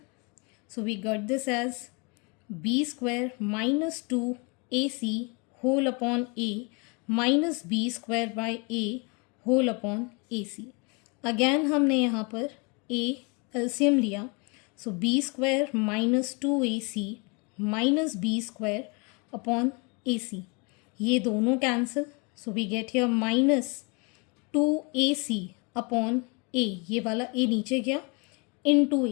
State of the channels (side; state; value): right; quieter; 31.5 dB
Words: so we got this as b square minus 2ac whole upon a minus b square by a whole upon a c. Again हमने यहाँ पर a LCM लिया, so b square minus 2ac minus b square upon a c, ये दोनों cancel, so we get here minus 2ac upon ए, ये वाला ए नीचे गया, into